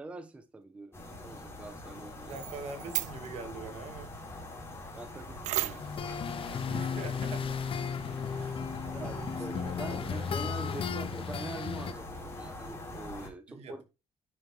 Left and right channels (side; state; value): both; normal; correlation 0.49